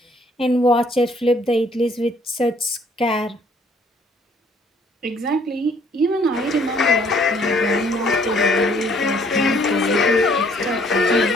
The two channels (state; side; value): normal; both; correlation 0.61